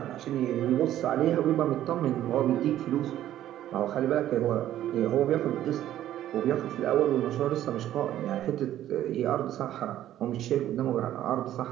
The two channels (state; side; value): quieter; left; 12.5 dB